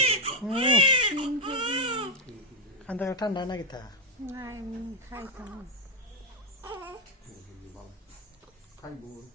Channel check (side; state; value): both; normal; correlation -0.01